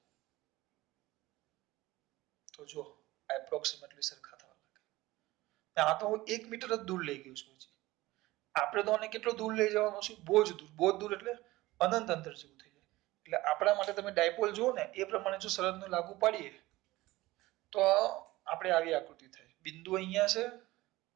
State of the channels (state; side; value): quieter; left; 18.6 dB